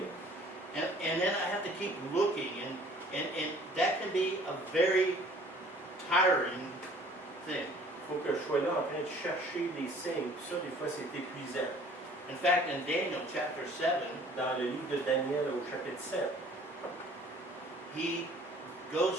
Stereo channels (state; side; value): normal; both; correlation 0.53